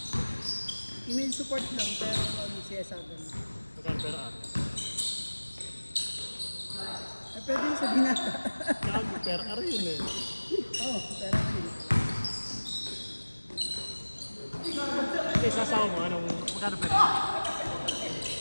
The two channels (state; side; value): inverted; both; correlation -1.00